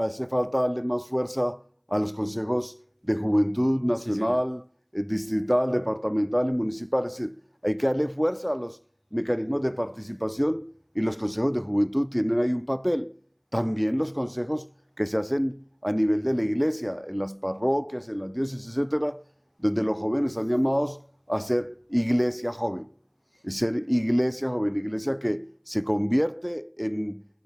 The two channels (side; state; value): both; identical; correlation 1.00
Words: falta darle más fuerza a los consejos de juventud nacional, distrital, departamental y municipal. Es decir, hay que darle fuerza a los mecanismos de participación y los consejos de juventud tienen ahí un papel. También los consejos que se hacen a nivel de la iglesia, en las parroquias, en las diócesis, etcétera, donde los jóvenes están llamados a ser iglesia joven. Ser iglesia que se convierte en